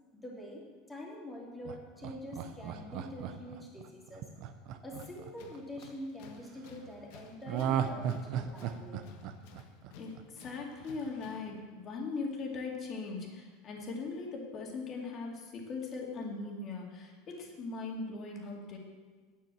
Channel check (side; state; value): both; normal; correlation 0.40